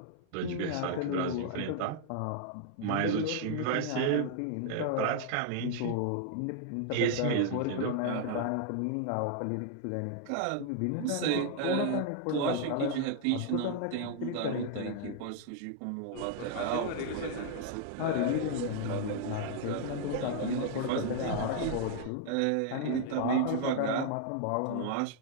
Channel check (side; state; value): both; different; correlation 0.00